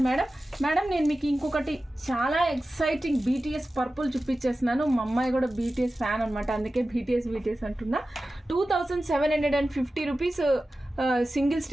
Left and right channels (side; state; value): both; normal; correlation 0.94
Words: మేడం. నేను మీకు ఇంకొకటి చాలా ఎక్సైటింగ్ బీటీఎస్ పర్పుల్ చూపించేస్తున్నాను. మా అమ్మాయి కూడా బీటీఎస్ ఫ్యాన్ అనమాట, అందుకే బీటీఎస్ అంటున్నా. 2750 రూపీస్ సింగిల్